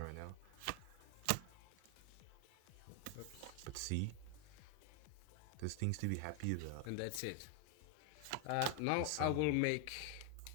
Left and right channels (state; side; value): different; both; correlation 0.00